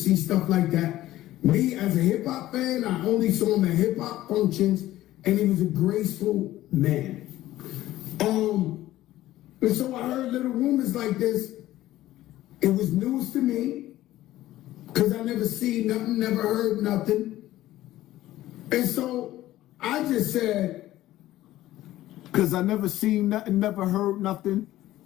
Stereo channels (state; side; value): quieter; right; 15.0 dB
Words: stuff like that. Me, as a hip-hop fan, I only saw him at hip-hop functions and he was a graceful man. And so I heard little rumors like this. It was news to me because I never seen nothing, never heard nothing. And so I just said, because I never seen nothing, never heard nothing.